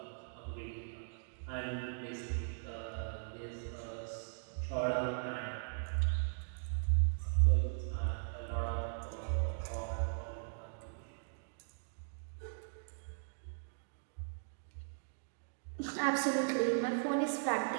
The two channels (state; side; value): silent; left; digital silence